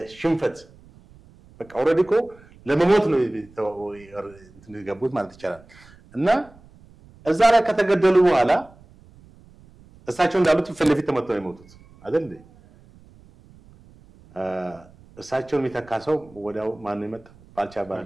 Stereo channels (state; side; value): noise; right; rumble, 25 dB below the sound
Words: ሽንፈት በቃ ኦሬዲ እኮ ለመሞት ነው እንትን ገቡት ማለት ይቻላል። እና እዛ ላይ ከተገደሉ በኋላ እሳቸው እንዳሉት ፊት ለፊት ተመተው የሞቱት አይደል እንዴ? እሳቸውን የሚተካሰው ወዲያው ማን ነው የመጣው? ባልቻ